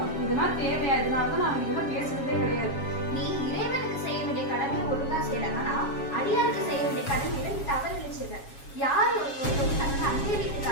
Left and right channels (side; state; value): right; late; 7.3 ms